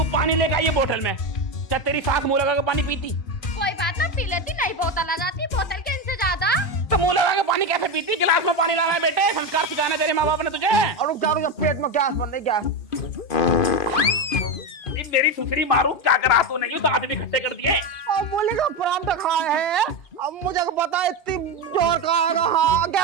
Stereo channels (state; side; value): late; right; 2.5 ms